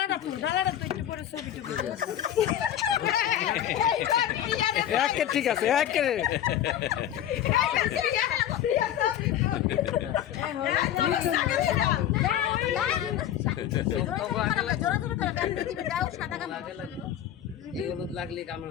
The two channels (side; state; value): right; quieter; 11.1 dB